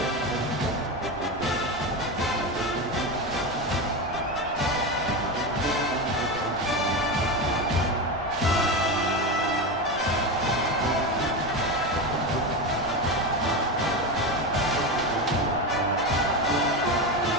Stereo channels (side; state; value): left; noise; rumble, 17 dB below the sound